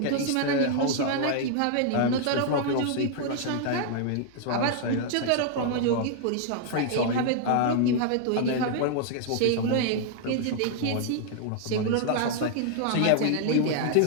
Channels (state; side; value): different; both; correlation 0.00